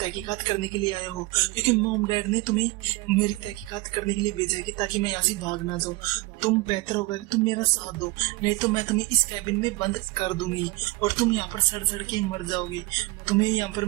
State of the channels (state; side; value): quieter; left; 22.7 dB